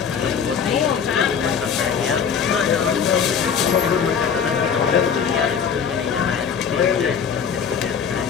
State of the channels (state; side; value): quieter; right; 7.0 dB